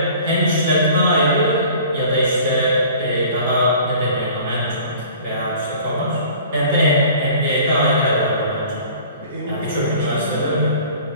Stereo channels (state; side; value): inverted; both; correlation -0.47